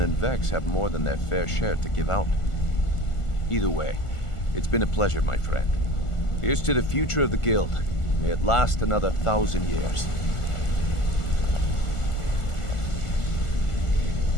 and Vex have more than their fair share to give out. Either way, it's been a pleasure, my friend. Here's to the future of the guild. May it last another 1,000 years.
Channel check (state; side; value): late; right; 1.4 ms